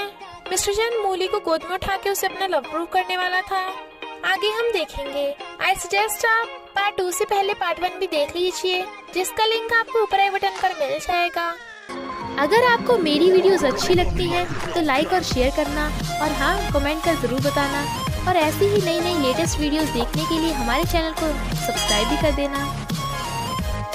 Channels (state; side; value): identical; both; correlation 1.00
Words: मिस्टर चैन मूली को गोद में उठा के उसे अपना लव प्रूव करने वाला था। आगे हम देखेंगे। आई सजेस्ट आप पार्ट 2 से पहले पार्ट 1 भी देख लीजिए, जिसका लिंक आपको ऊपर आई बटन पर मिल जाएगा। अगर आपको मेरी वीडियोस अच्छी लगती हैं तो लाइक और शेयर करना, और हाँ, कमेंट कर जरूर बताना। और ऐसी ही नई नई लेटेस्ट वीडियोस देखने के लिए हमारे चैनल को सब्सक्राइब भी कर देना।